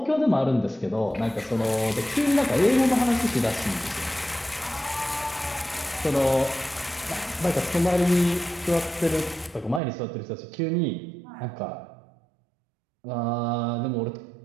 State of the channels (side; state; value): left; drops out; at 9.8 s